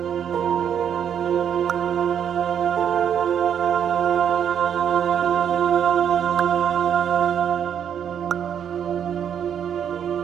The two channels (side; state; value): left; quieter; 8.7 dB